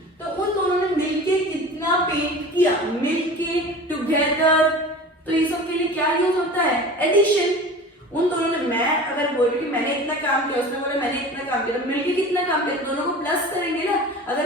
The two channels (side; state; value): both; normal; correlation 0.37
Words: तो उन दोनों ने मिलके कितना पेंट किया, मिलके टुगेदर, तो ये सब के लिए क्या यूज होता है एडिशन। उन दोनों ने, मैं अगर बोल रही हूँ मैंने इतना काम किया, उसने बोला मैंने इतना काम किया, तो मिलके कितना काम किया, दोनों को प्लस करेंगे ना। अगर